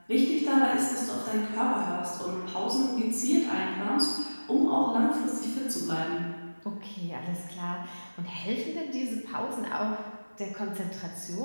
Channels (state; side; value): inverted; both; correlation -1.00